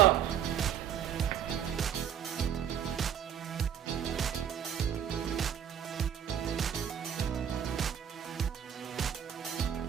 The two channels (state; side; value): quieter; left; 9.3 dB